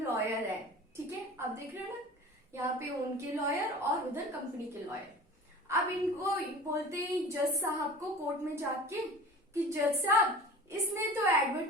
है, ठीक है, आप देख रहे हो ना, यहाँ पे उनके लॉयर और उधर कंपनी के लॉयर। अब इनको बोलते हैं जज साहब को कोर्ट में जाके कि जज साहब, इसने तो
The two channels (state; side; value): normal; both; correlation 0.39